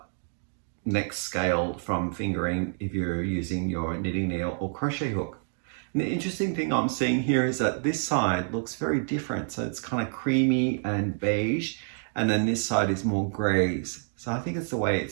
next scale from fingering if you're using your knitting needle or crochet hook. And the interesting thing I'm seeing here is that this side looks very different. So it's kind of creamy and beige, and then this side is more grays. So I think it's the way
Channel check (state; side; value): silent; left; 59 dB below the other